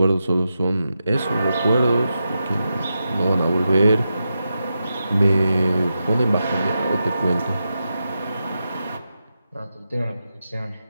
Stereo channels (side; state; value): both; inverted; correlation -0.88